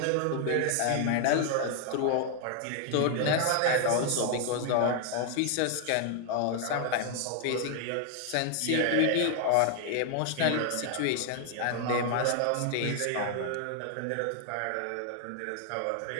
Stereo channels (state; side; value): different; both; correlation 0.00